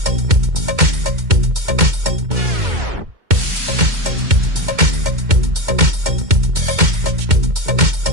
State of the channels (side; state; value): left; late; 2.2 ms